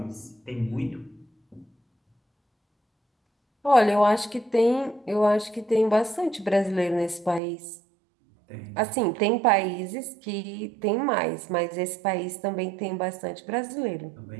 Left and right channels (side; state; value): left; drops out; at 7.4 s